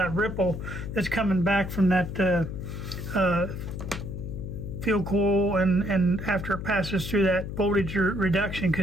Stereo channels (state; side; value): noise; left; hum, 7 dB below the sound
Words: ripple that's coming back from that field coil and after it passes through that voltage reduction,